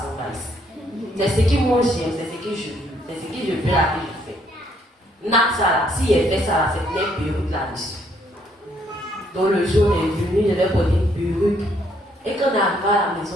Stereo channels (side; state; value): both; normal; correlation 0.69